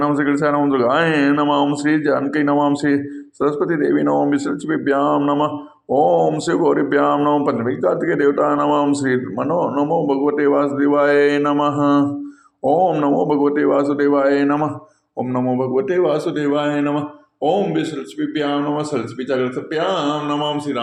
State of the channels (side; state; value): both; identical; correlation 1.00